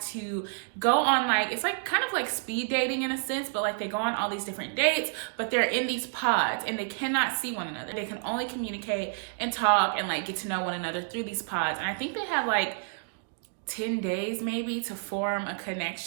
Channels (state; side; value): silent; left; digital silence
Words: to go on like, it's like kind of like speed dating in a sense, but like they go on all these different dates, but they're in these pods and they cannot see one another. They can only communicate and talk and like get to know one another through these pods. And I think they have like 10 days maybe to form a